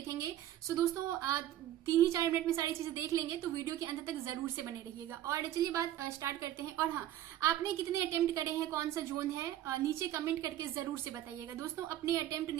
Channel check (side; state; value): left; quieter; 12.7 dB